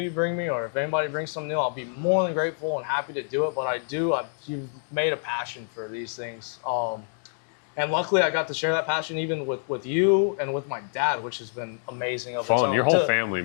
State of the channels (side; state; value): right; silent; digital silence